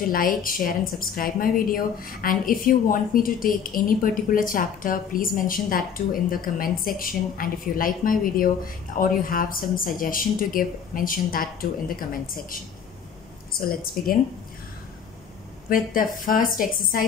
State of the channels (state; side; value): quieter; right; 7.4 dB